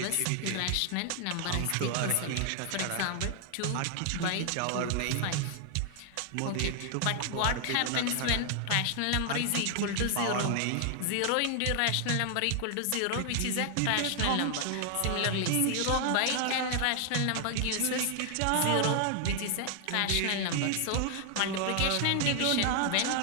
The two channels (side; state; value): both; different; correlation 0.00